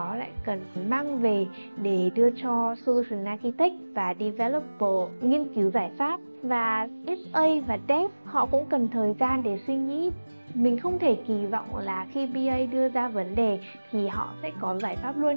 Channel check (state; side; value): inverted; both; correlation -1.00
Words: lại cần mang về để đưa cho Solution Architect và Developer nghiên cứu giải pháp. Và SA và Dev họ cũng cần thời gian để suy nghĩ. Mình không thể kỳ vọng là khi BA đưa ra vấn đề thì họ sẽ có giải pháp luôn